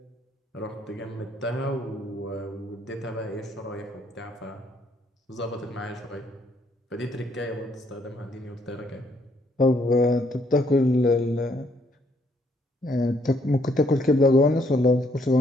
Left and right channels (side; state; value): both; normal; correlation 0.69